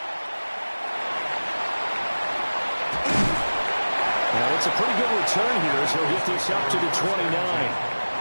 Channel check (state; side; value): inverted; both; correlation -1.00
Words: Now, it's a pretty good return here as he'll get this up to the 29.